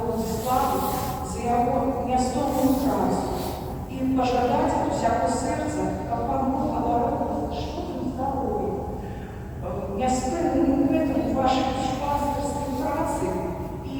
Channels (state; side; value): identical; both; correlation 1.00